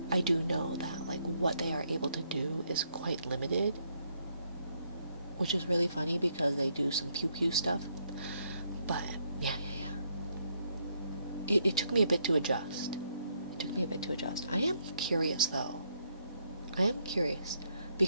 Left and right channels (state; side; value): inverted; both; correlation -0.74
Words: I do know that like what they are able to do is quite limited, which is really funny because they do some pew pew stuff. But yeah. It took me a bit to adjust. I am curious though.